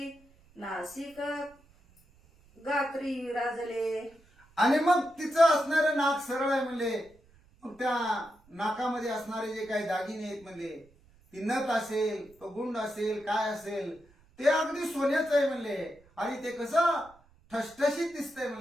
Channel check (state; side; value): noise; right; rumble, 29 dB below the sound